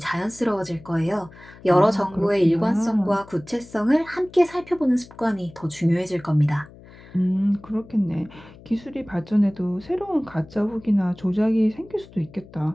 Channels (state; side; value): noise; left; hum, 21 dB below the sound